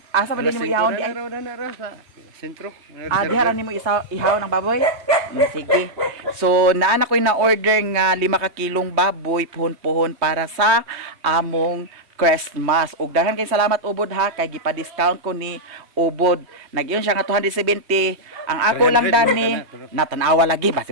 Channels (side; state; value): left; late; 3.1 ms